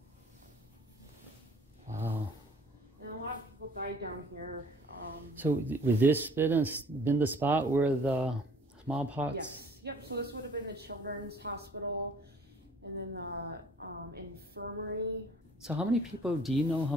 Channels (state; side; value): normal; both; correlation 0.54